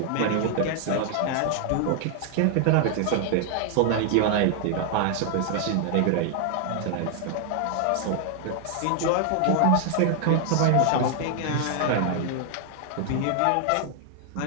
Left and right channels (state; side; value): different; both; correlation 0.00